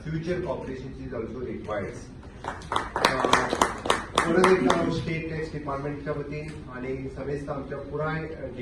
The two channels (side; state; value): both; identical; correlation 1.00